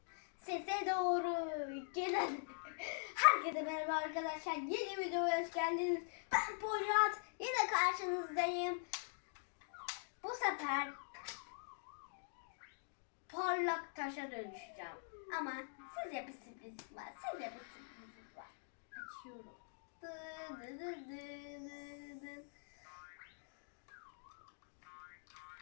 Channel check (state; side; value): silent; right; digital silence